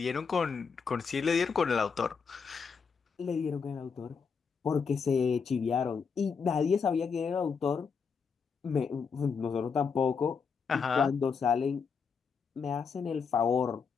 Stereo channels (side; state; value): right; quieter; 5.8 dB